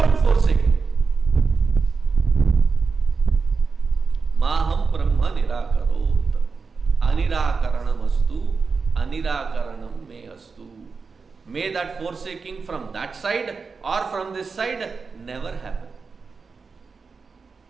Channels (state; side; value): quieter; left; 4.8 dB